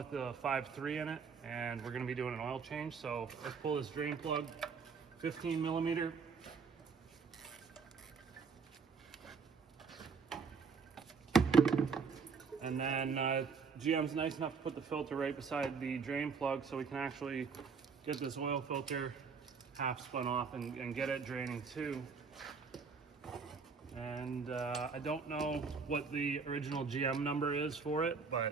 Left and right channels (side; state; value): left; quieter; 5.4 dB